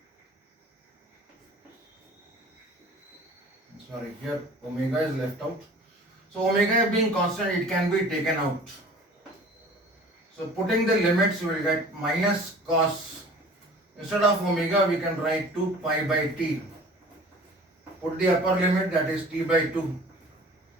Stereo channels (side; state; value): both; normal; correlation 0.45